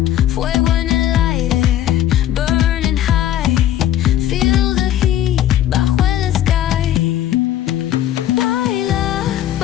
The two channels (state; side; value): quieter; right; 11.9 dB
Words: Fuego en el aire, burning high. Feel the heat bajo el sky. Baila,